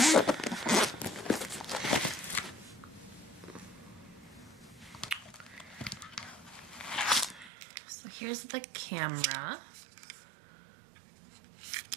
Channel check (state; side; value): drops out; left; at 7.5 s